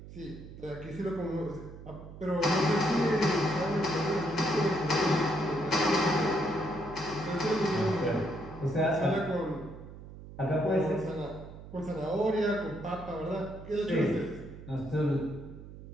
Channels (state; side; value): noise; right; hum, 15 dB below the sound